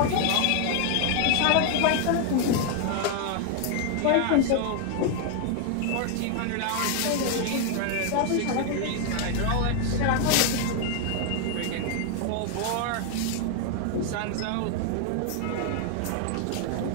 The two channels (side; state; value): both; different; correlation 0.00